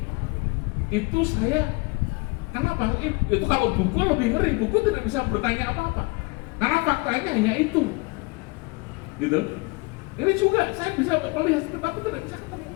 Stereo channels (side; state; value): right; quieter; 27.9 dB